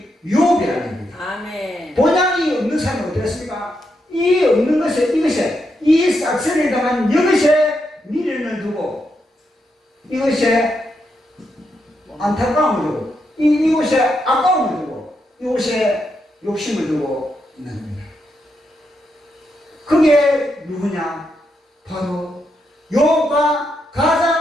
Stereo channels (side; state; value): both; normal; correlation 0.82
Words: 욥이라는 겁니다. 아멘. 본향이 없는 사람은 어떻습니까? 이 없는 것에, 이것에, 이 싹쓸이를 당한 이것에 미련을 두고, 이것에 안타까움을 두고, 이곳에 아까움을 두고, 이곳에 욕심을 두고 있는 겁니다. 그게 누구냐? 바로 욥과